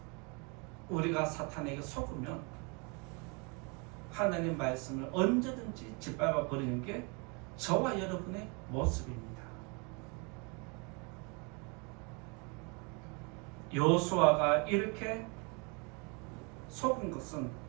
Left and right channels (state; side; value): quieter; left; 32.3 dB